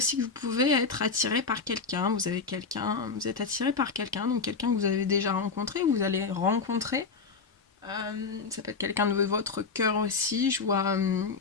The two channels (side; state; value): right; quieter; 4.8 dB